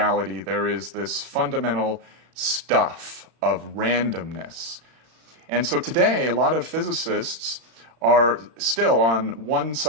there is this fundamental stuff of randomness. And so today a lot of physicists are still on one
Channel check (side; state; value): left; late; 35 ms